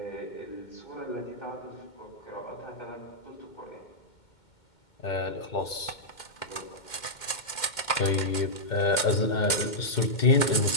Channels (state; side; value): late; right; 2.2 ms